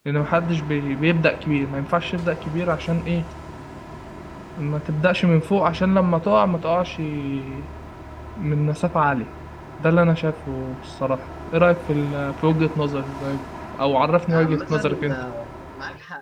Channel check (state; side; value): identical; both; correlation 1.00